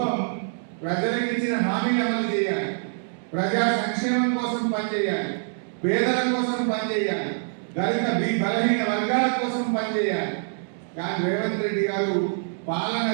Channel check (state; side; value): silent; left; digital silence